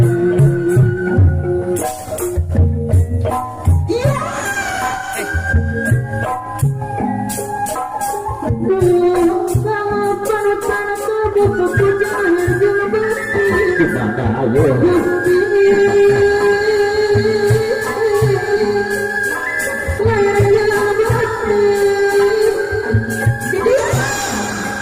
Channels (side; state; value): both; identical; correlation 1.00